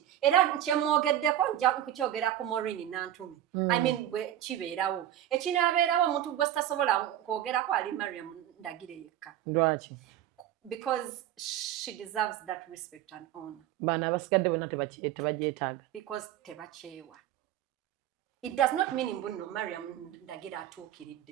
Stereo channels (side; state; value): left; quieter; 12.0 dB